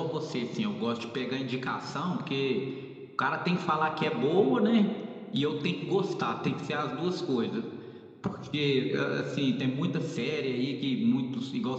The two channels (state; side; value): identical; both; correlation 1.00